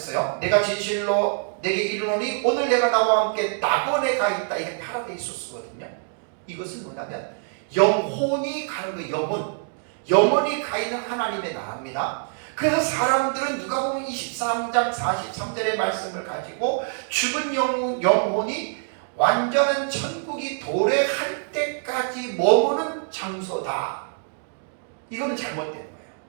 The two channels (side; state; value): left; silent; 62 dB below the other